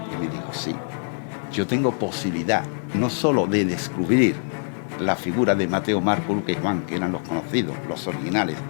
Y me dijo, sí. Yo tengo posibilidad no solo de descubrir la figura de Mateo, Marco, Lucas y Juan, que eran los conocidos, los originales,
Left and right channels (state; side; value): silent; right; 62 dB below the other